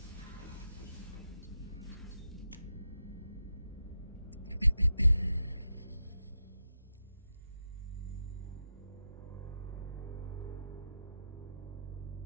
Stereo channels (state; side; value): inverted; both; correlation -0.87